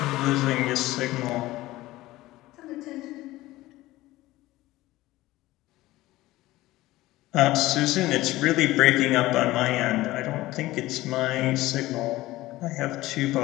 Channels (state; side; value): quieter; right; 17.5 dB